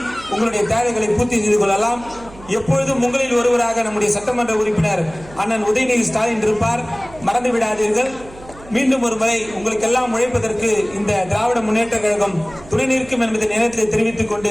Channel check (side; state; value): right; noise; hum, 20 dB below the sound